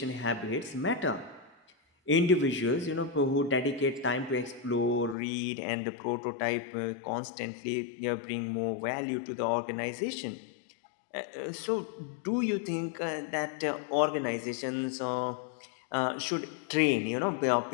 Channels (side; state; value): right; drops out; at 5.2 s